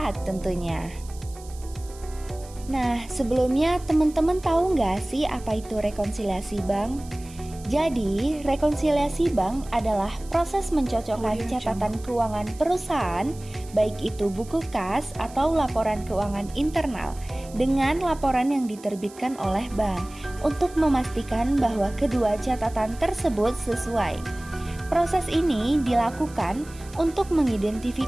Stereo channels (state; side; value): noise; right; hiss, 21 dB below the sound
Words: tentunya. Nah, sebelumnya teman-teman tahu nggak sih apa itu rekonsiliasi bank? Jadi, rekonsiliasi bank adalah proses mencocokkan catatan keuangan perusahaan, baik itu buku kas atau laporan keuangan internal, dengan laporan yang diterbitkan oleh bank untuk memastikan bahwa kedua catatan tersebut sesuai. Proses ini dilakukan untuk